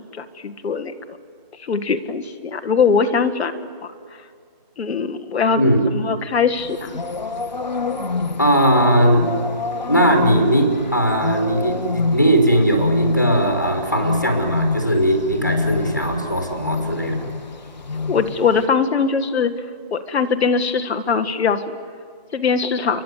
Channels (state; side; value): inverted; both; correlation -0.34